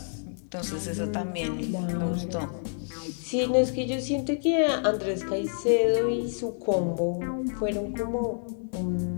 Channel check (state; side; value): silent; right; 59 dB below the other